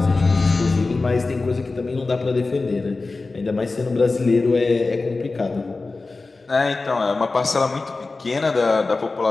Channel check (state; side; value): quieter; right; 3.6 dB